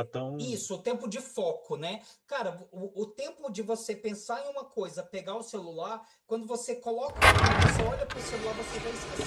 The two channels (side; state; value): both; identical; correlation 1.00